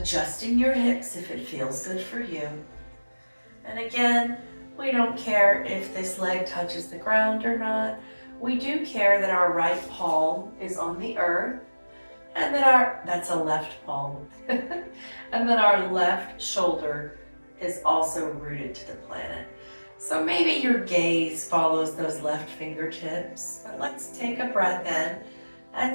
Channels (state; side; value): inverted; both; correlation -1.00